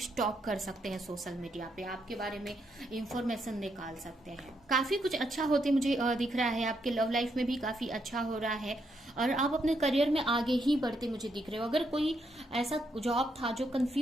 कर सकते हैं सोशल मीडिया पे, आपके बारे में इंफॉर्मेशन निकाल सकते हैं। काफी कुछ अच्छा होते मुझे दिख रहा है। आपके लव लाइफ में भी काफी अच्छा हो रहा है और आप अपने करियर में आगे ही बढ़ते मुझे दिख रहे हो। अगर कोई ऐसा जॉब था जो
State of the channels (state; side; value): normal; both; correlation 0.78